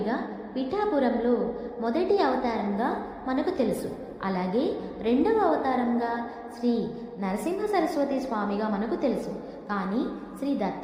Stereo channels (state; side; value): identical; both; correlation 1.00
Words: పిఠాపురంలో మొదటి అవతారంగా మనకు తెలుసు. అలాగే రెండవ అవతారంగా శ్రీ నరసింహ సరస్వతి స్వామిగా మనకు తెలుసు. కానీ శ్రీ